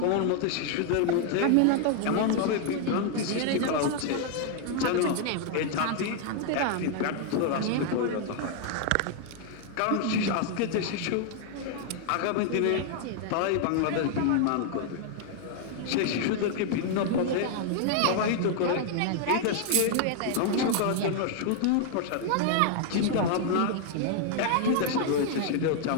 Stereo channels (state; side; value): different; both; correlation 0.00